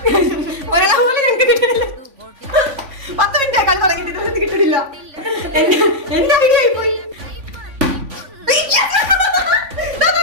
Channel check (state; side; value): late; left; 3.5 ms